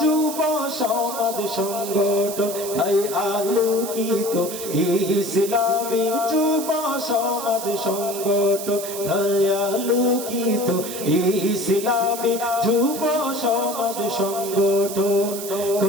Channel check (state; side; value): noise; right; hiss, 9 dB below the sound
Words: যুব সমাজ সংগঠন তাই আলোকিত ইসলামী যুব সমাজ সংগঠন তাই আলোকিত ইসলামী যুব সমাজ সংগঠন